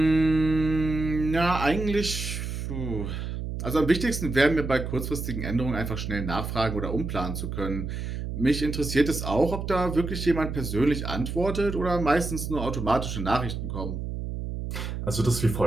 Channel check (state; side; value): noise; right; hum, 5 dB below the sound